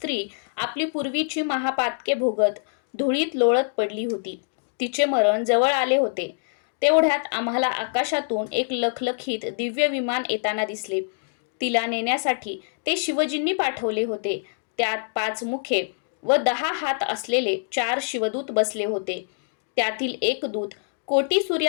आपली पूर्वीची महापातके भोगत धुळीत लोळत पडली होती. तिचे मरण जवळ आले होते. तेवढ्यात आम्हाला आकाशातून एक लखलखीत दिव्य विमान येताना दिसले. तिला नेण्यासाठी ते शिवजींनी पाठवले होते. त्यात 5 मुखे व 10 हात असलेले 4 शिवदूत बसले होते. त्यातील एक दूत कोटी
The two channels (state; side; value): silent; right; digital silence